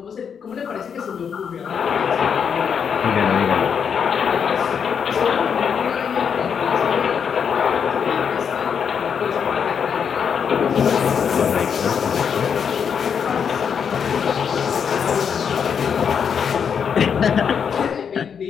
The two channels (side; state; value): right; quieter; 7.1 dB